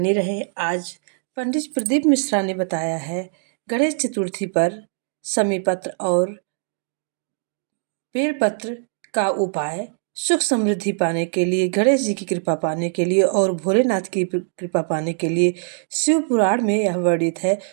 रहे। आज पंडित प्रदीप मिश्रा ने बताया है गणेश चतुर्थी पर समीपत्र और बेलपत्र का उपाय सुख समृद्धि पाने के लिए, गणेश जी की कृपा पाने के लिए और भोलेनाथ की कृपा पाने के लिए शिव पुराण में यह वर्णित है।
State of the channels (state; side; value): silent; left; digital silence